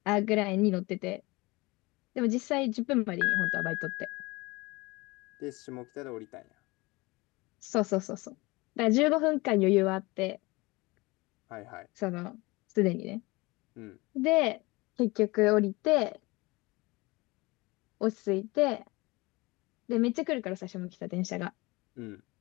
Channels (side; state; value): right; quieter; 23.5 dB